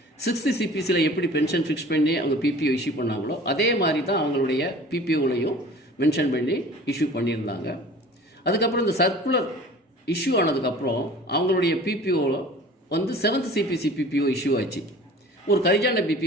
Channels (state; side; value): normal; both; correlation 0.44